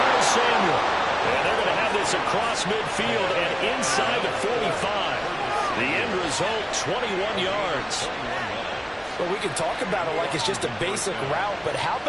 Samuel. And they're going to have this across midfield and inside the 45. The end result, 21 yards. Well, we can talk about it like it's just a basic route, but how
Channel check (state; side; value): identical; both; correlation 1.00